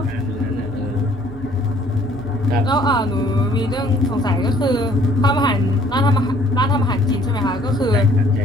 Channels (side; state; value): right; noise; hum, 17 dB below the sound